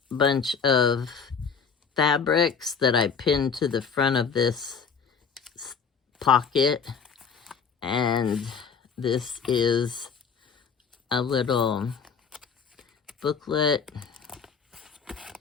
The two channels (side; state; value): right; quieter; 6.1 dB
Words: bunch of fabrics that I pinned to the front of this pocket. And this is a little booklet.